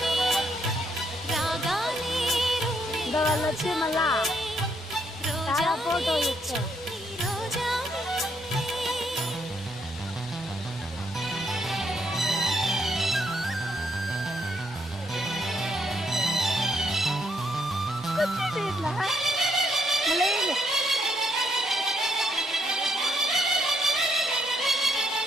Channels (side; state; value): both; normal; correlation 0.74